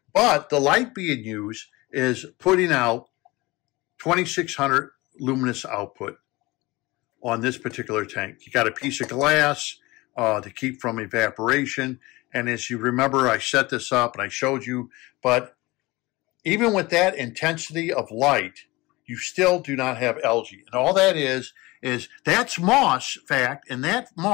But the light being used is putting out 2600 luminous output on this particular tank. You got a piece of glass to keep from evaporation. And as you remember, I set this up and I showed you, but even with that intensity of light, you still do not have algae. And all that is that's moss, fact, and that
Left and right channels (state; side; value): quieter; right; 21.8 dB